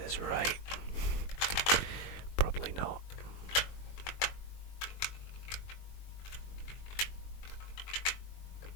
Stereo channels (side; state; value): right; late; 21 ms